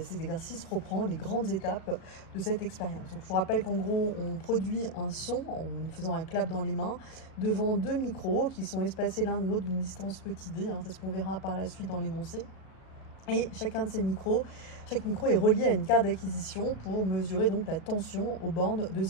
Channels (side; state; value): right; late; 37 ms